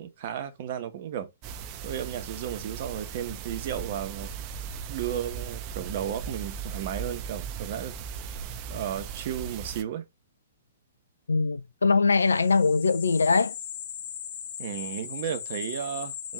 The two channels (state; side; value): inverted; both; correlation -0.68